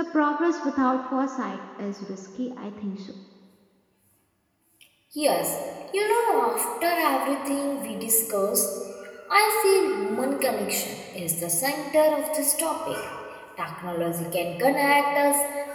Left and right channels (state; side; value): identical; both; correlation 1.00